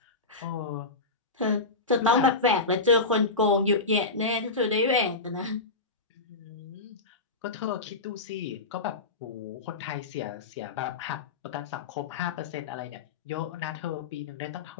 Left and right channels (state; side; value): quieter; right; 3.7 dB